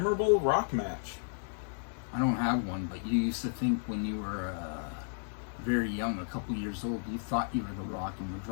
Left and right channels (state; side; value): silent; right; digital silence